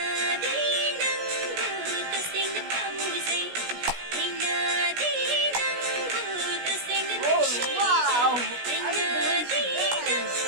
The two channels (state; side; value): late; left; 16 ms